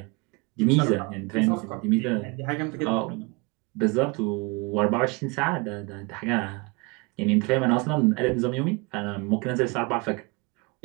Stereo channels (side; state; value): left; quieter; 28.2 dB